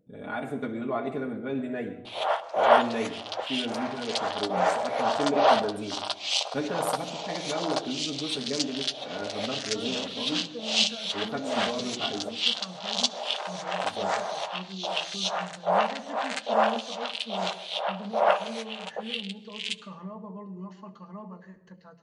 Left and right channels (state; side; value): identical; both; correlation 1.00